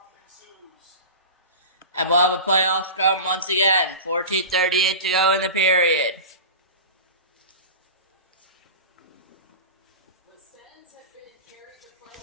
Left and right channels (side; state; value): both; inverted; correlation -0.30